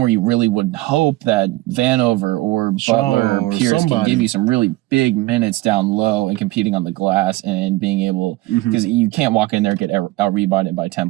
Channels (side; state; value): left; quieter; 19.3 dB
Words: you really would hope that Vanover or Butler or Pierce can give you some really big minutes down low and competing on the glass and being able, because you can't walk in there, get out-rebounded by 10